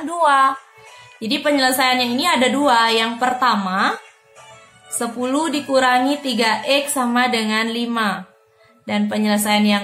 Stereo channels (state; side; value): identical; both; correlation 1.00